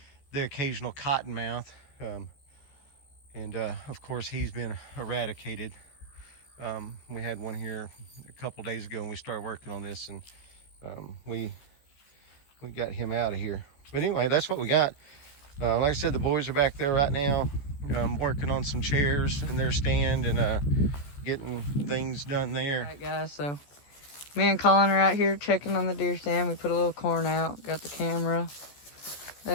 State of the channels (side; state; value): right; late; 14 ms